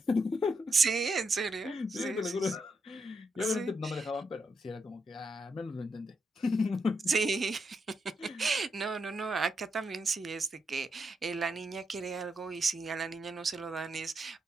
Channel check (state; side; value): normal; both; correlation 0.81